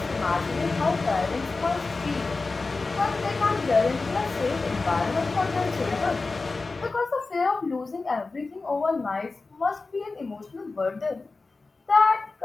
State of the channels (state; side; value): quieter; right; 3.8 dB